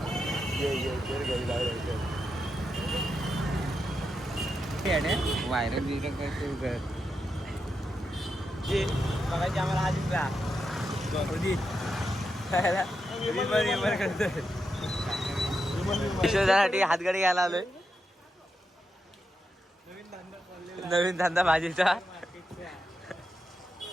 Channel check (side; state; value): both; normal; correlation 0.85